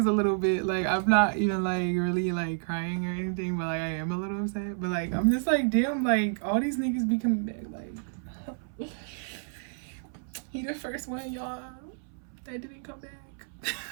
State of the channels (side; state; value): left; silent; 58 dB below the other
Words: a little bit, like, I'm not even, like, really, like, crying or anything, but, like, I am a little upset, but, like, I'm just, like, damn, like, all these niggas be coming back, like, he the first one, y'all, that didn't come